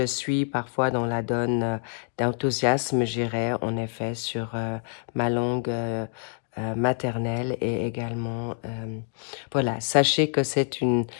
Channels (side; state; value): right; silent; 60 dB below the other